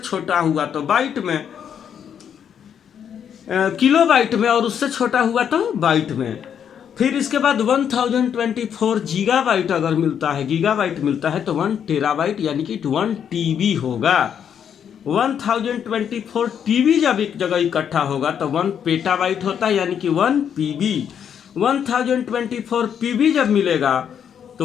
हुआ तो बाइट में, किलोबाइट में, और उससे छोटा हुआ तो बाइट में। फिर इसके बाद 1024 गीगाबाइट अगर मिलता है, गीगाबाइट मिलता है तो 1 टेराबाइट यानी कि 1 टीबी होगा। 1024 टीबी जब एक जगह इकट्ठा होगा तो 1 पेटाबाइट होता है, यानी कि 1 पीबी। 1024 पीबी जब मिलेगा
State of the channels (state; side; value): quieter; right; 8.4 dB